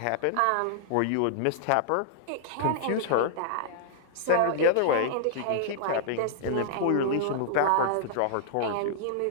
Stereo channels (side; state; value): both; different; correlation -0.01